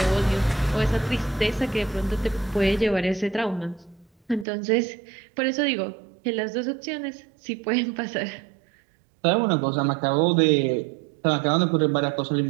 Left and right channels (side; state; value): left; drops out; at 4.5 s